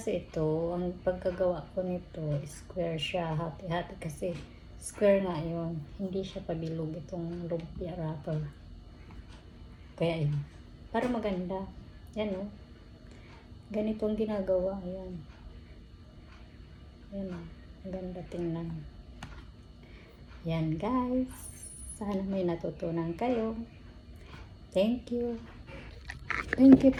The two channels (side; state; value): both; identical; correlation 1.00